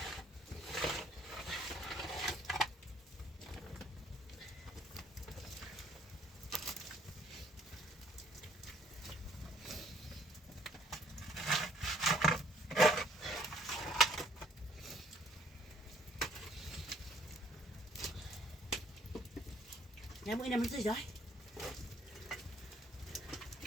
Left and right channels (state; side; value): normal; both; correlation 0.62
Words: Nhà mũi này mình rơi rồi.